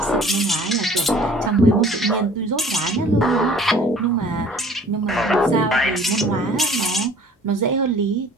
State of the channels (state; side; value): normal; both; correlation 0.51